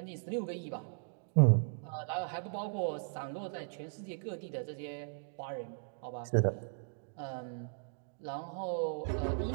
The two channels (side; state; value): left; silent; digital silence